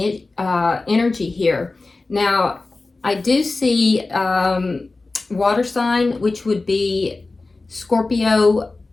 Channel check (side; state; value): right; quieter; 3.5 dB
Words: energy here. Now, I do see water sign, which would be Scorpio,